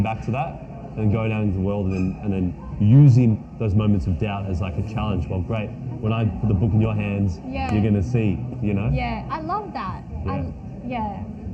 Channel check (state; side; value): identical; both; correlation 1.00